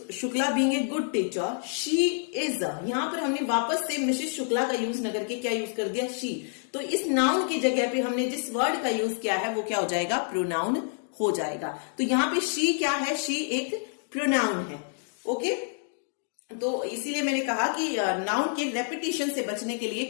Shukla being a good teacher, she is, यहां पर हमने वापस से मिसेस शुक्ला का यूज न करके क्या यूज कर दिया? शी। तो इस नाउन की जगह पे हमने जिस वर्ड का यूज किया है वो क्या हो जाएगा? प्रोनाउन हो जाएगा। तो यहां पे शी क्या है? शी एक प्रोनाउन है। ओके, तो इसीलिए मैंने कहा कि नाउन के रेपिटेशन से बचने के लिए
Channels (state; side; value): silent; right; 58 dB below the other